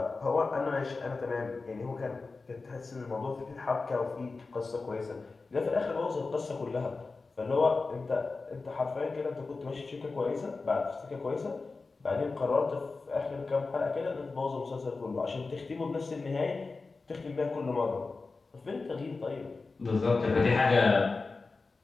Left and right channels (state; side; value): quieter; right; 3.9 dB